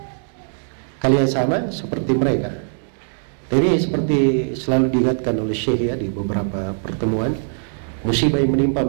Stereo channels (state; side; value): silent; left; digital silence